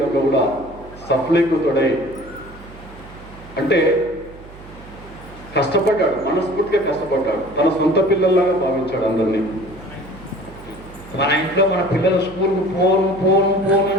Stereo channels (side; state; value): right; noise; hum, 18 dB below the sound